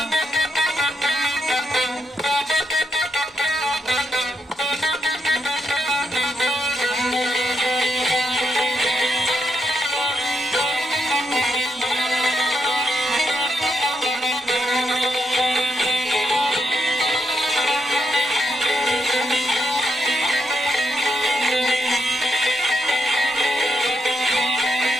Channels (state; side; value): normal; both; correlation 0.82